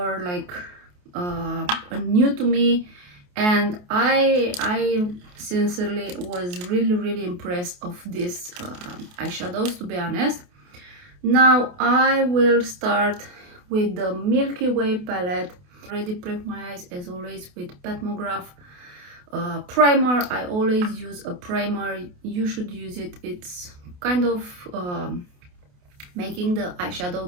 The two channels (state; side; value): late; left; 28 ms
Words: like new to me, and I sincerely was really impressed of these eyeshadows, to be honest. Now I will start with the Milky Way palette. Already prep my eyes as always with Petmograph primer. I always use a primer. You should use it. It's kind of making the